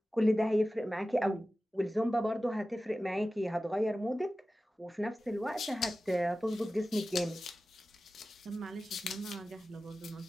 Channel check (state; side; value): normal; both; correlation 0.95